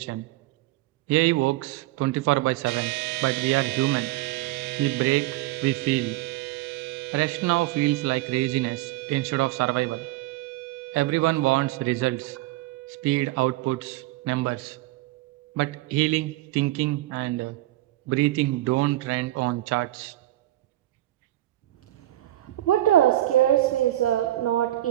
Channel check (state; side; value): quieter; left; 16.1 dB